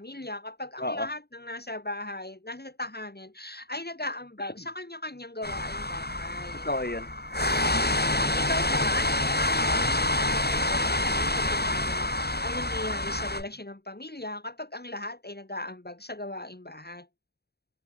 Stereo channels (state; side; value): late; right; 0.47 ms